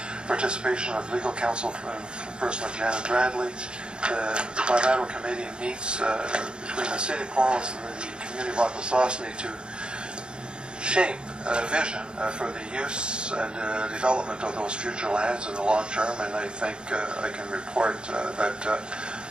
participation of legal counsel from person of Janet Bradley. The bilateral committee meets between the City of Cornwall and the community of Akwesasne to shape a vision for the use and development of those future lands in the long term, and I think I can report that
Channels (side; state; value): left; late; 0.051 ms